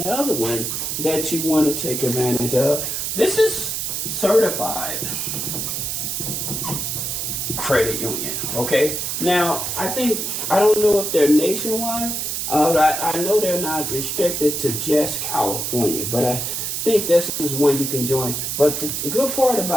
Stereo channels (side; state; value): right; noise; hiss, 2 dB below the sound